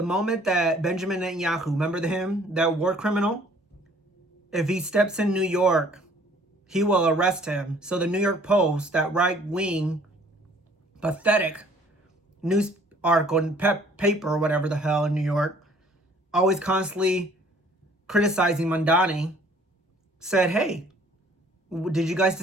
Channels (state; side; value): normal; both; correlation 0.57